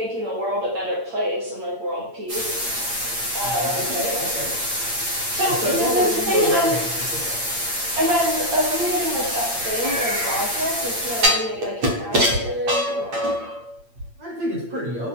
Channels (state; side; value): late; left; 8.7 ms